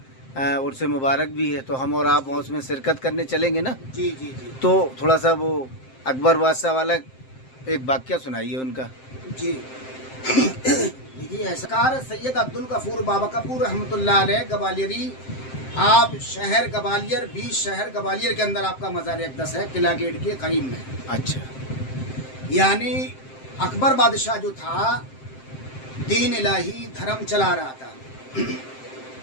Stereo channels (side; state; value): right; late; 7.7 ms